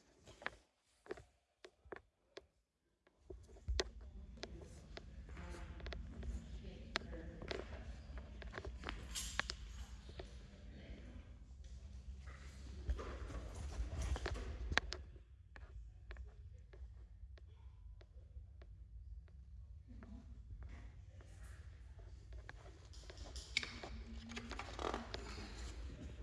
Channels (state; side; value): identical; both; correlation 1.00